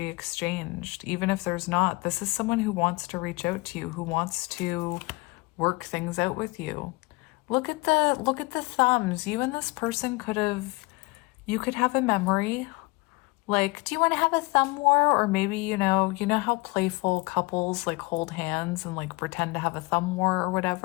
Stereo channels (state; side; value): quieter; right; 25.0 dB